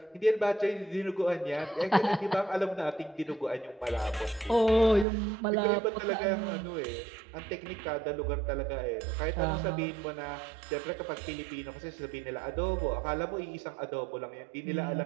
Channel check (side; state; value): left; drops out; at 5.1 s